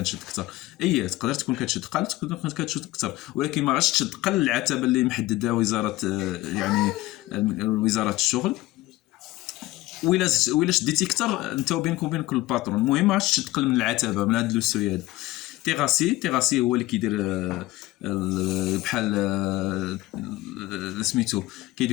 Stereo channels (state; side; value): quieter; right; 18.1 dB